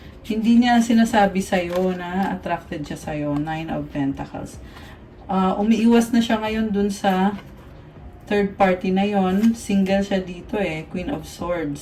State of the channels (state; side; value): identical; both; correlation 1.00